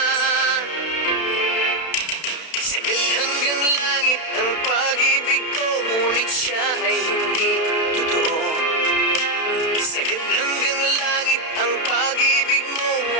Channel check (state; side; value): late; right; 32 ms